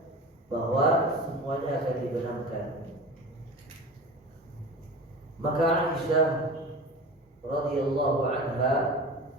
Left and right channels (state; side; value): normal; both; correlation 0.34